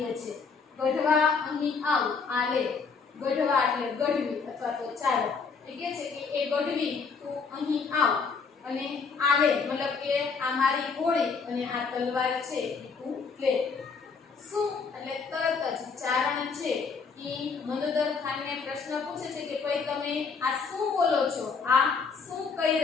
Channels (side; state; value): right; quieter; 5.2 dB